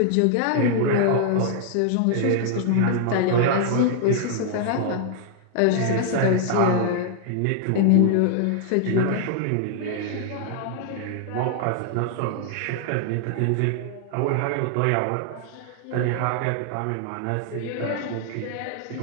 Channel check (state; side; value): different; both; correlation -0.01